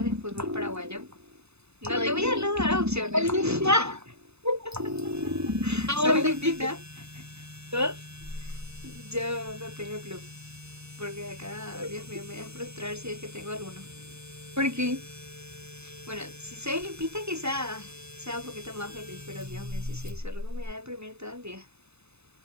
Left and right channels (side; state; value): left; late; 0.80 ms